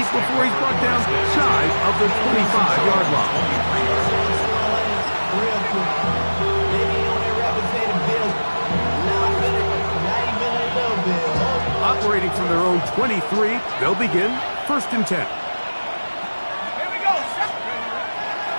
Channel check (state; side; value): inverted; both; correlation -1.00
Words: he's brought down shy of the 25-yard line. Operating from their own 23, they'll begin first and 10.